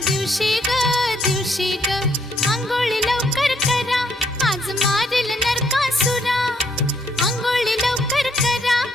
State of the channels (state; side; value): normal; both; correlation 0.71